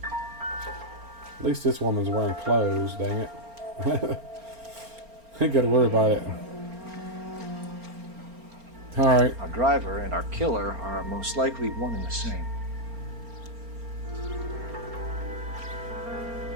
At least this woman's wearing clothes, dang it. Ain't gotta worry about it. Alright. Our driver and our killer are most likely one and the same.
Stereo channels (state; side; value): late; left; 4.4 ms